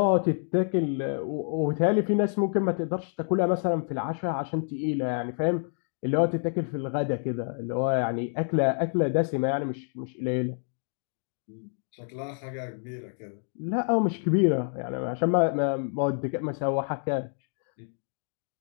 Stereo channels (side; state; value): right; silent; 58 dB below the other